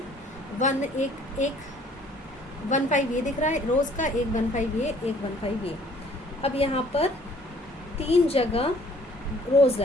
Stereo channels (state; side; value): normal; both; correlation 0.57